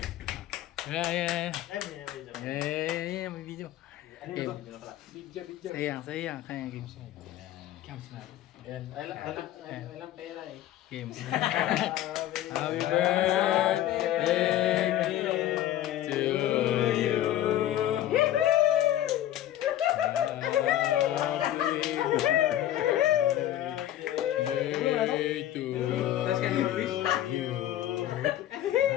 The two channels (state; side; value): quieter; right; 12.8 dB